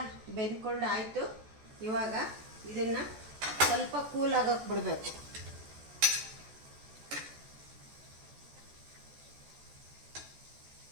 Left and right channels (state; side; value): late; left; 14 ms